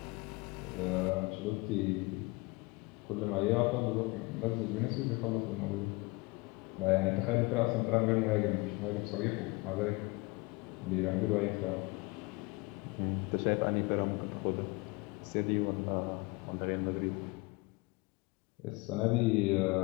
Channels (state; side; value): quieter; right; 25.3 dB